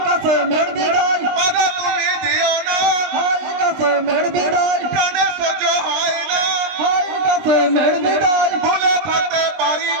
কাসেমের বিদায়, বাধা তুমি দিও না, হাই কাসেমের বিদায়, প্রাণে সহ্য হয় না, হাই কাসেমের বিদায়, ভুলে থাকতে পারি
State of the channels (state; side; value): late; left; 20 ms